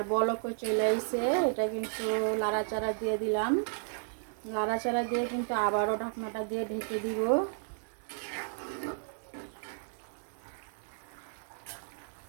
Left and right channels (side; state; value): left; silent; digital silence